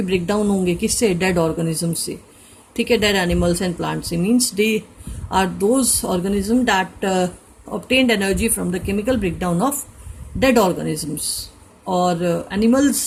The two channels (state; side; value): identical; both; correlation 1.00